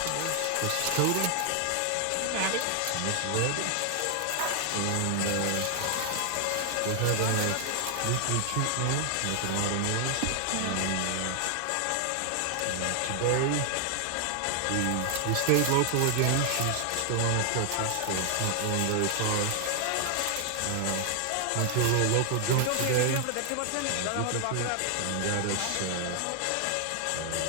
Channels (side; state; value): both; different; correlation 0.00